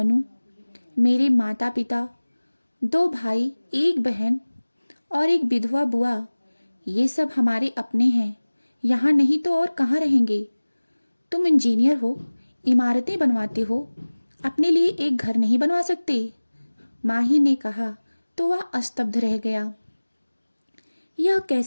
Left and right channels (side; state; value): both; inverted; correlation -1.00